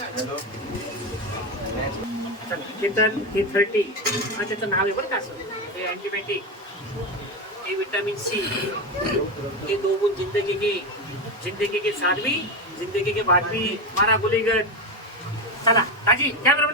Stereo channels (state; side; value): normal; both; correlation 0.15